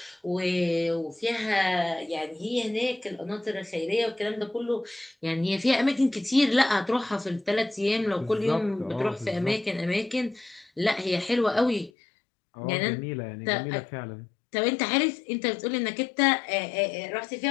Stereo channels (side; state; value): right; drops out; at 11.9 s